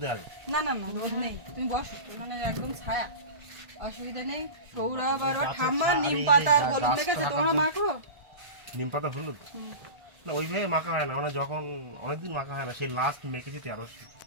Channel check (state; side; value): late; left; 1.5 ms